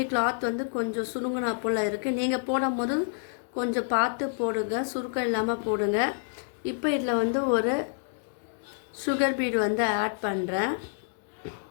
கிளாத் வந்து கொஞ்சம் சுருங்கினா போல் இருக்குது. நீங்கள் போடும் போது கொஞ்சம் பார்த்து போடுங்க, சுருக்கம் இல்லாமல் போடுங்க. இப்போ இதில் வந்து ஒரு சுகர் பீட் வந்து ஆட் பண்ணுறேன்.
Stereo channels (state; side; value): silent; right; digital silence